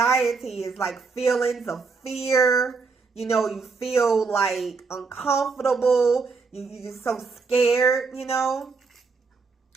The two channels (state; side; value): quieter; left; 4.6 dB